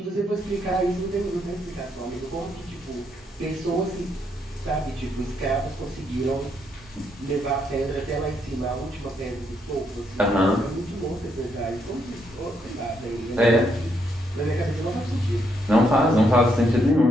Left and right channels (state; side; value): normal; both; correlation 0.75